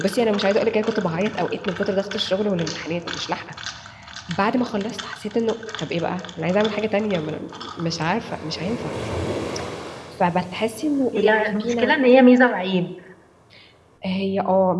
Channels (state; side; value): identical; both; correlation 1.00